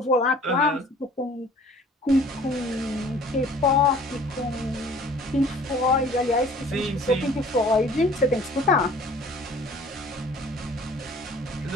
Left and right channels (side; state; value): both; normal; correlation 0.51